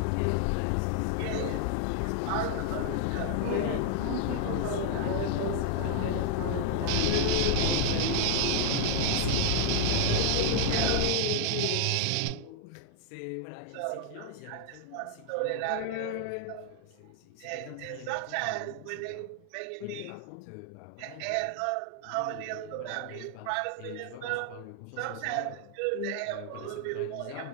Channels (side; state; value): both; different; correlation 0.00